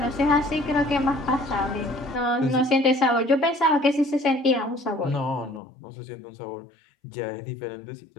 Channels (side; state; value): right; drops out; at 5.6 s